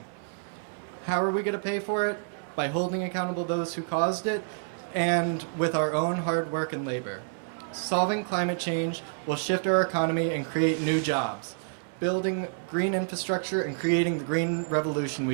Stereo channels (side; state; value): left; silent; 59 dB below the other